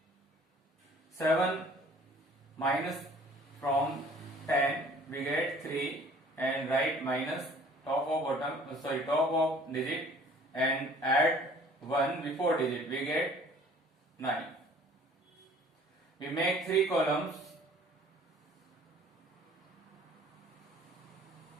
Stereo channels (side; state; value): both; normal; correlation 0.53